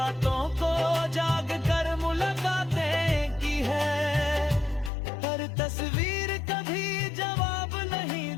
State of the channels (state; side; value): drops out; right; at 4.9 s